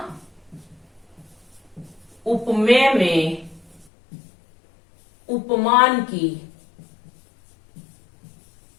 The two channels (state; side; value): drops out; right; at 3.9 s